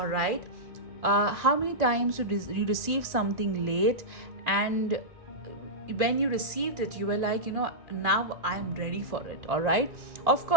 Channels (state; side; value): late; left; 2.3 ms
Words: right. How many times you receive something late, and when you received it, you were like, now I'm ready for it. All right. Of